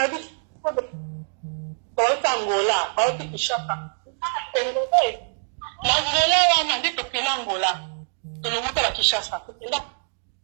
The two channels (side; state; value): left; silent; digital silence